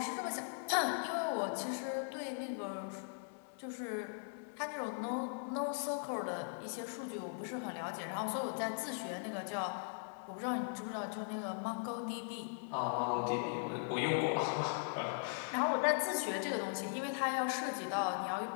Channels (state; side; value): silent; right; 52 dB below the other